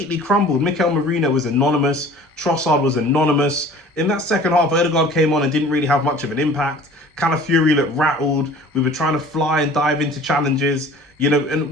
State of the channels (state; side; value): normal; both; correlation 0.46